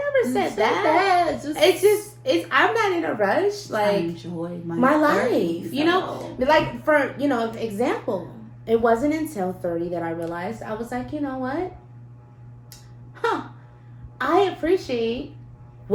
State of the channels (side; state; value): both; identical; correlation 1.00